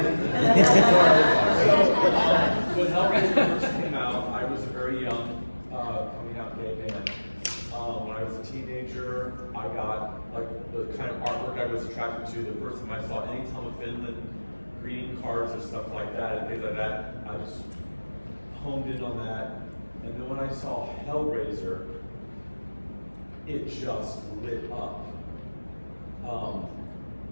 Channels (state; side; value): inverted; both; correlation -1.00